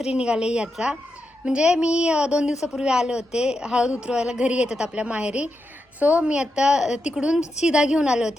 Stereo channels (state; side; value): normal; both; correlation 0.86